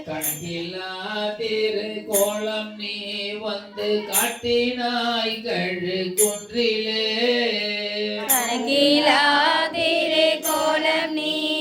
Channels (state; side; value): identical; both; correlation 1.00